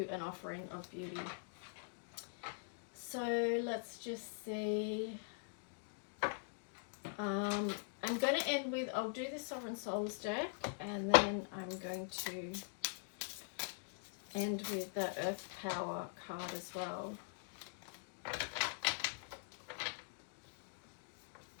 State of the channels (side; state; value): right; silent; digital silence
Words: an offering of beauty. So let's just see. I'm going to end with, I'll do the Sovereign Souls deck, and then I'm going to end with the Earth Power card as well.